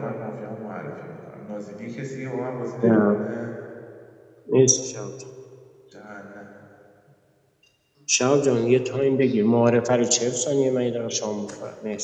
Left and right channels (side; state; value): both; identical; correlation 1.00